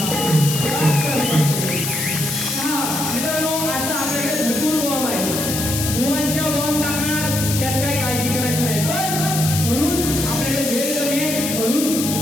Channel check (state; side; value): noise; left; hiss, 3 dB below the sound